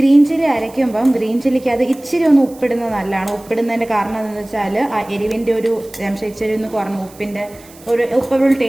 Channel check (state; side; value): noise; right; hiss, 23 dB below the sound